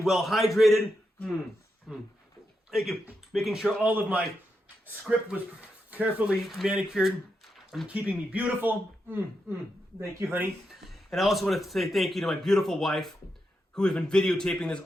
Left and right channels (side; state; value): both; normal; correlation 0.85